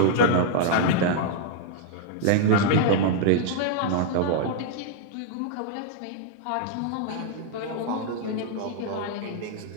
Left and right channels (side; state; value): both; different; correlation -0.01